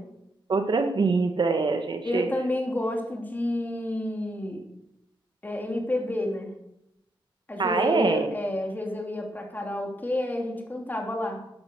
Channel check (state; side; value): normal; both; correlation 0.77